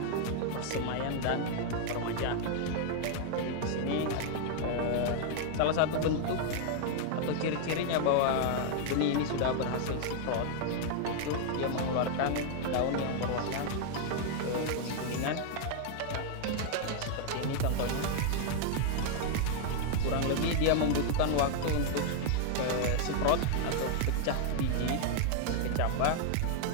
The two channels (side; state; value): both; different; correlation 0.00